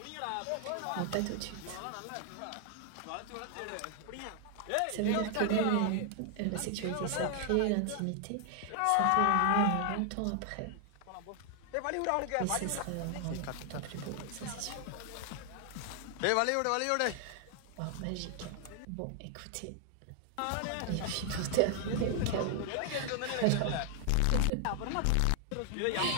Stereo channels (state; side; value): different; both; correlation 0.00